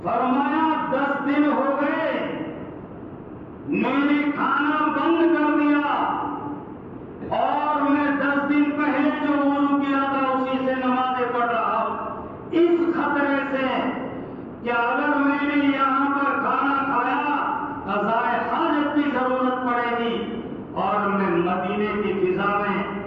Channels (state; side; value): identical; both; correlation 1.00